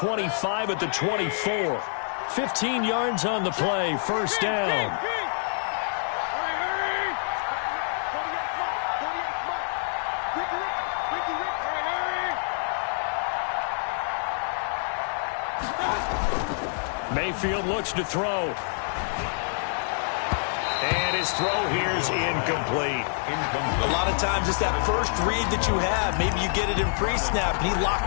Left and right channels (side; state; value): right; silent; digital silence